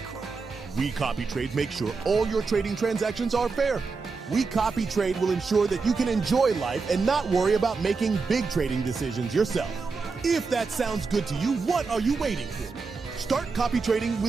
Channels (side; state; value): left; quieter; 4.5 dB